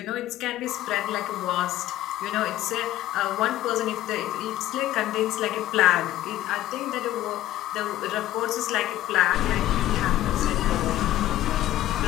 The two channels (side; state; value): right; quieter; 14.2 dB